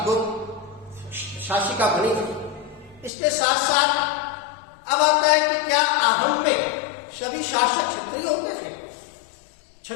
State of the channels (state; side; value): drops out; right; at 3.1 s